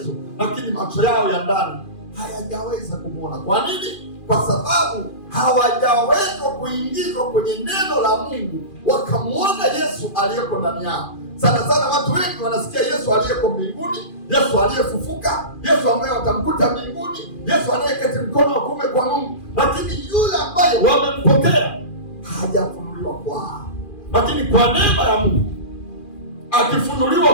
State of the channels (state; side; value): late; right; 2.4 ms